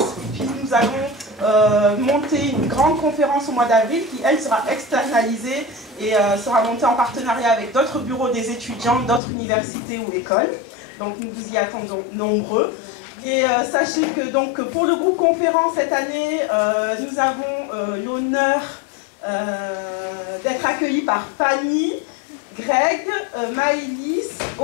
Puis nous allons monter une grande conférence au mois d'avril qui, elle, sera externalisée et sera montée en partenariat avec d'autres bureaux des étudiants, d'autres universités ou écoles. Donc nous vous y attendons nombreux. Et sachez que donc, pour le groupe conférence cette année, nous avons l'honneur d'être accueillis par Fanny, Greg, Maëlys,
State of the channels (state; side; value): drops out; right; at 9.2 s